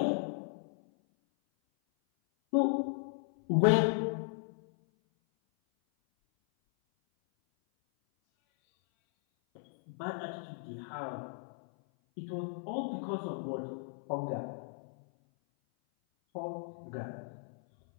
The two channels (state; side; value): silent; right; 54 dB below the other